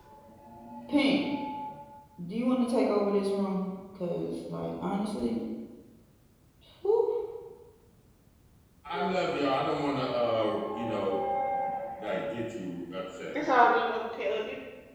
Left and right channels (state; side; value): identical; both; correlation 1.00